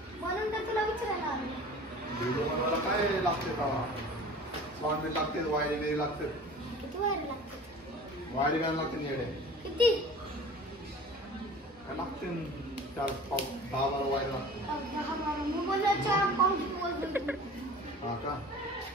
म्हणून तर तुला विचारायला आलो. डीजे बनवायला काय लागते का? साऊंड बी लागते, वायर बी लागते. किती वायर लागते? वायर घ्यायला लागते येडे. किती? काय लागते 4-5-10-12 वायर लागते. हा का?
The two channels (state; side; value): normal; both; correlation 0.42